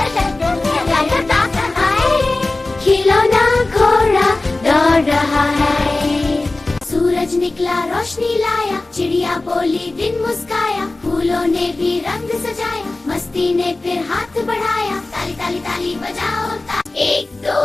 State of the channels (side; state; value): right; quieter; 3.1 dB